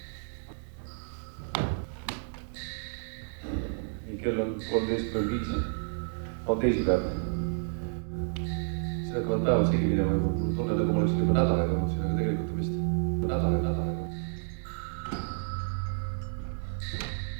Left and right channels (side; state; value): left; silent; 58 dB below the other